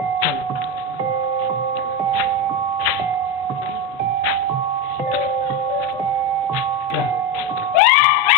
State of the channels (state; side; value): normal; both; correlation 0.14